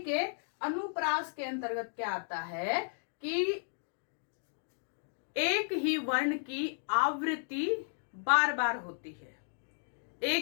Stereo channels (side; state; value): right; silent; digital silence